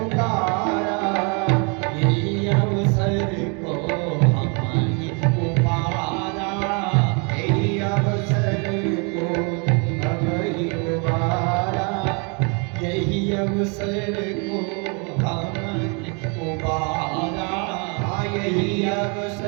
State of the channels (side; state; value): left; quieter; 34.7 dB